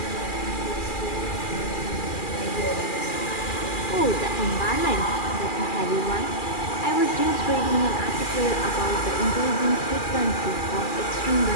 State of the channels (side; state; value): right; late; 2.4 ms